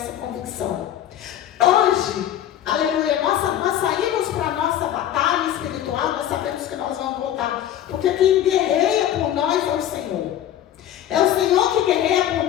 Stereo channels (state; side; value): quieter; right; 11.3 dB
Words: convicção. Hoje, aleluia, nós saímos para a nossa batalha espiritual, nós sabemos que nós vamos voltar, porque quem guerreia por nós é o Senhor. É o Senhor que guerreia por